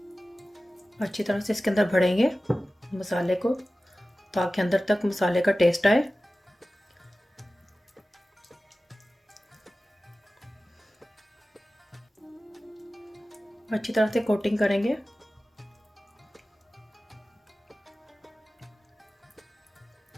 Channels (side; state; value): both; normal; correlation 0.96